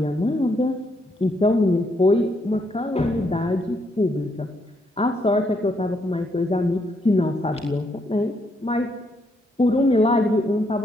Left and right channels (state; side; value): normal; both; correlation 0.75